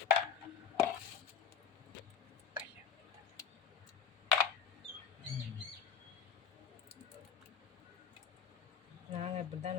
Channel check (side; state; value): right; quieter; 7.3 dB